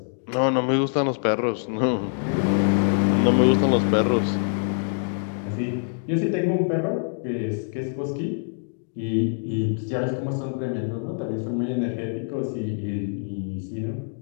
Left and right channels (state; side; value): silent; right; digital silence